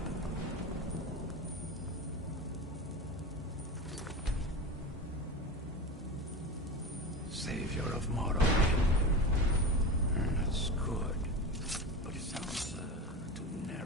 Savior of Morrowind. That's good, but it sounds too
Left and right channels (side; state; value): both; normal; correlation 0.26